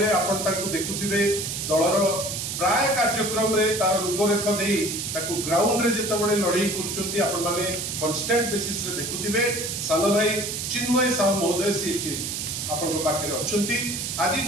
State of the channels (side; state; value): right; noise; hiss, 4 dB below the sound